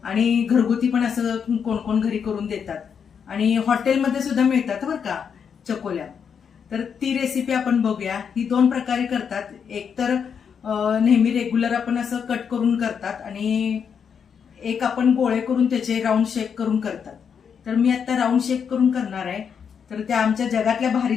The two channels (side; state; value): right; quieter; 7.0 dB